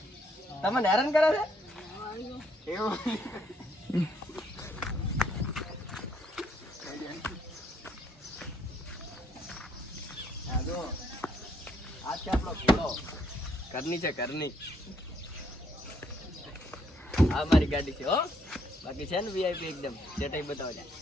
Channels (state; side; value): normal; both; correlation 0.70